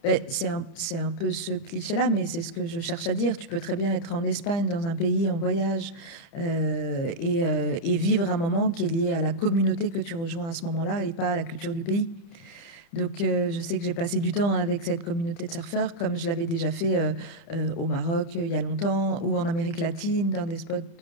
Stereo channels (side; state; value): right; late; 30 ms